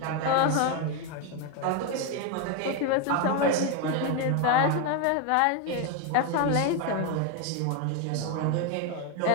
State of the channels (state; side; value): different; both; correlation 0.01